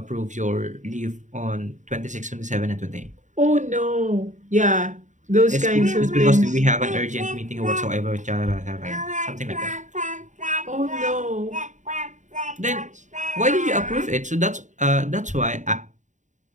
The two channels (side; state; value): left; late; 0.36 ms